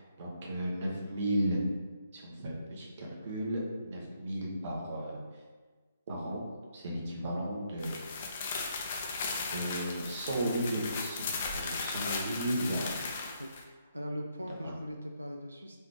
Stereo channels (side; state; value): both; inverted; correlation -0.73